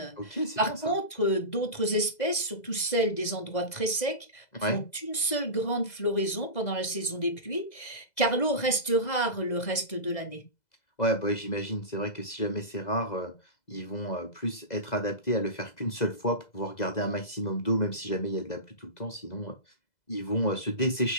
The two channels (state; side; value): late; right; 2.0 ms